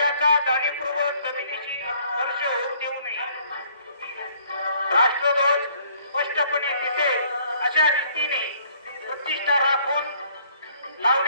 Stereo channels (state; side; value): inverted; both; correlation -0.62